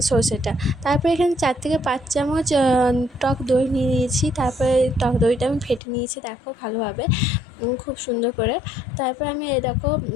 সরষেটা। তারপরে এখানে 4 থেকে 5 চামচ টক দই নিয়ে নিয়েছি। তারপরে টক দইটা আমি ফেটে নিয়েছি, দেখো ভালোভাবে খুব সুন্দর করে। তারপর আমি এই দেখো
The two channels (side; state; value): right; drops out; at 5.8 s